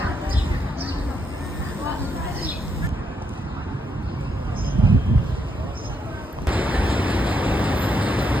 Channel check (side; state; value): both; normal; correlation 0.78